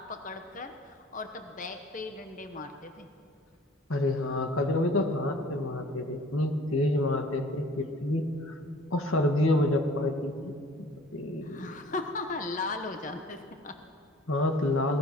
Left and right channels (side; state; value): both; normal; correlation 0.50